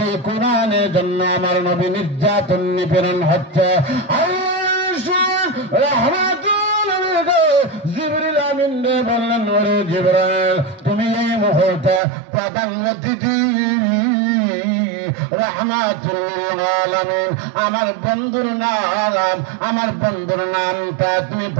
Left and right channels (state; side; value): drops out; left; at 12.0 s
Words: কোরআনের জন্য আমার নবী নির্যাতন নিপীড়ন হচ্ছে। জিবরিল আমিন বললেন, ওরে জিবরাইল, তুমি এই মুহূর্তে প্রধানমন্ত্রী রাহমাতুল লিল আলামিন আমার বন্ধুর নামটা তুমি